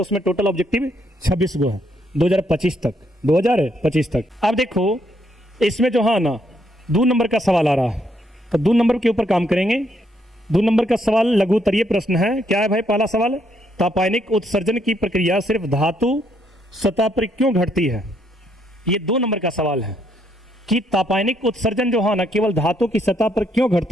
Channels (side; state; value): both; normal; correlation 0.73